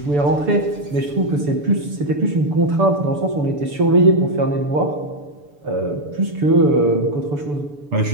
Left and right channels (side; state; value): left; late; 6.9 ms